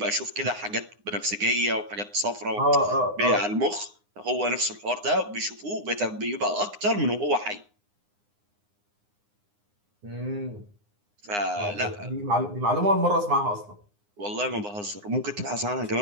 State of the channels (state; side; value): late; left; 9.7 ms